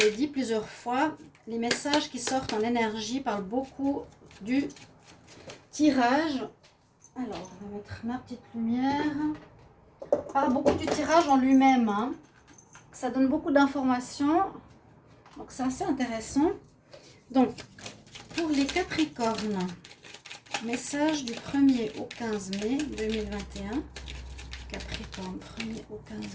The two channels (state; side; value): identical; both; correlation 1.00